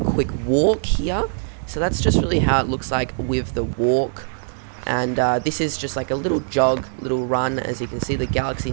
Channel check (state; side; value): silent; left; digital silence